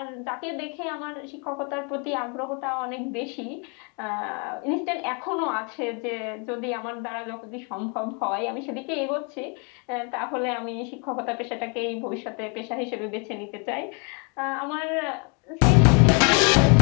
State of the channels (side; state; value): right; quieter; 35.2 dB